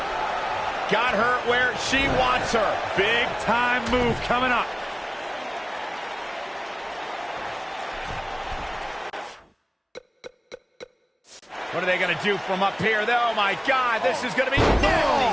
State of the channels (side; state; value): both; identical; correlation 1.00